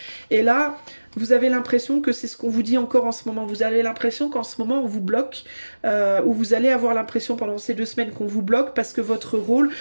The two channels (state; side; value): inverted; both; correlation -1.00